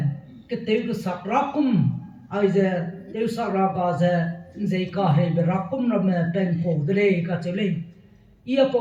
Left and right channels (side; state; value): both; identical; correlation 1.00